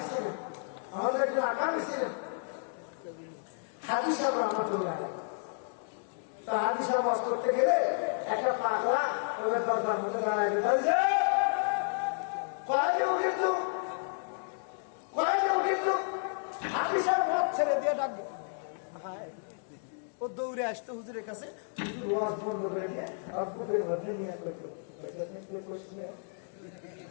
ছিলেন, আমাদের একজন আকাবি ছিলেন হাজী সাহেব রহমাতুল্লাহ। তো হাজী সাহেব বাস করতে গেলে একটা পাগলা ওদের দরজার মধ্যে দাঁড়ায় বলছে কয়েকে উঠিত হাজী সাহেব মত ছেড়ে দিয়ে ডাকবো, ও দৌড়ে আসতো হুজুরের কাছে, হুজুর ওয়াজ বন্ধ করে দিয়ে আর বুকের মধ্যে নিয়ে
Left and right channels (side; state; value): right; silent; digital silence